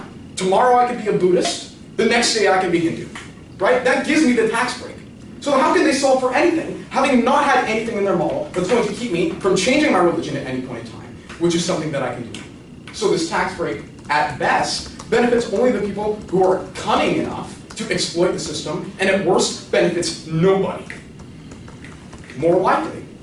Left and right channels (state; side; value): identical; both; correlation 1.00